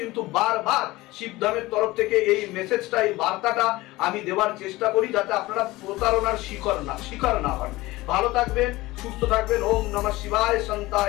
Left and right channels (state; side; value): quieter; right; 19.4 dB